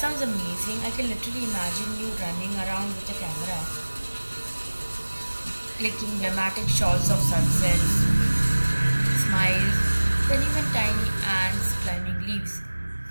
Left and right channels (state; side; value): inverted; both; correlation -1.00